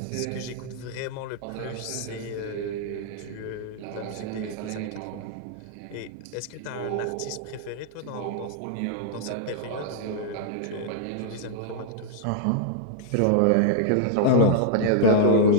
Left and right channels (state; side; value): different; both; correlation -0.01